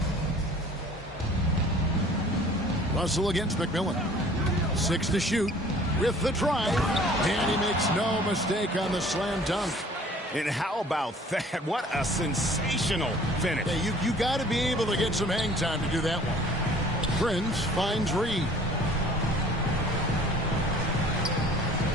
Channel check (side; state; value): both; normal; correlation 0.51